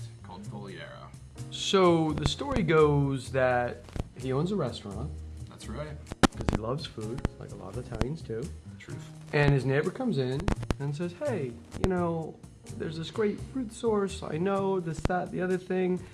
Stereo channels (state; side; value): identical; both; correlation 1.00